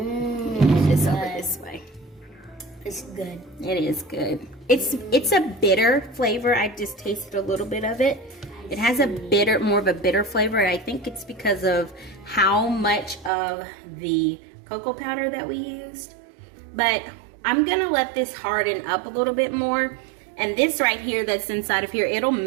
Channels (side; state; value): left; drops out; at 13.3 s